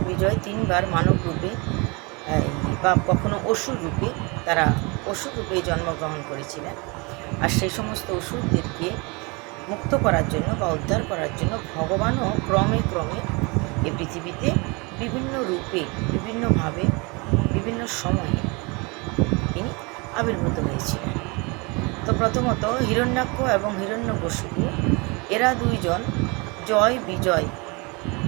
বিজয় 3 বার মানব রূপে বা কখনো অসুর রূপে, তারা অসুর রূপে জন্মগ্রহণ করেছিলেন। আর সেই সমস্ত অসুরদেরকে মুক্ত করার জন্য বা উদ্ধার করার জন্য ভগবানও ক্রমে ক্রমে এ পৃথিবীতে বিভিন্ন রূপে, বিভিন্নভাবে, বিভিন্ন সময়ে তিনি আবির্ভূত হয়েছিলেন। তো প্রথমত হিরণ্যাক্ষ এবং হিরণ্যকশিপু, এরা 2 জন জয় বিজয়,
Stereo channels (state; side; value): quieter; left; 28.5 dB